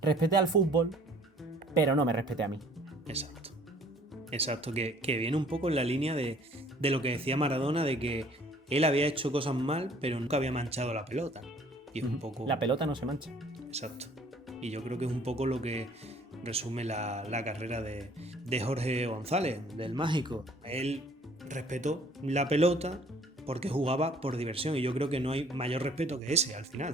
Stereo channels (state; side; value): normal; both; correlation 0.55